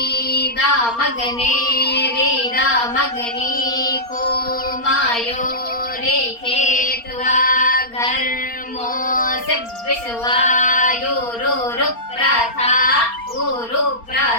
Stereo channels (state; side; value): late; right; 4.3 ms